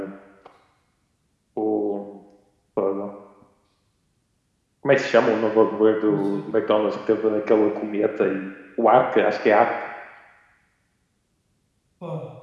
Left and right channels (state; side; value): identical; both; correlation 1.00